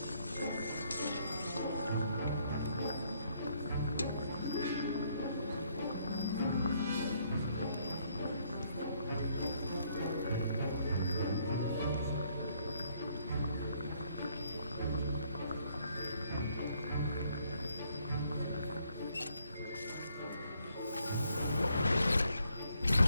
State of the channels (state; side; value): inverted; both; correlation -0.69